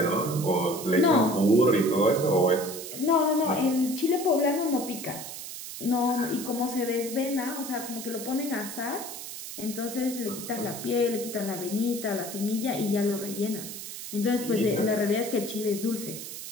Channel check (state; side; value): noise; right; hiss, 9 dB below the sound